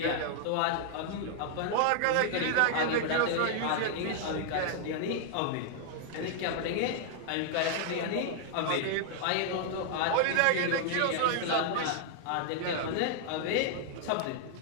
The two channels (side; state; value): both; different; correlation 0.00